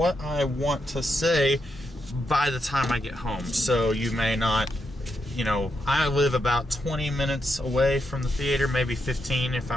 I want to say by the time I get home. So you may not, you know, I live about 20 minutes away from the theater, maybe 15 if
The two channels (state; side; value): normal; both; correlation 0.82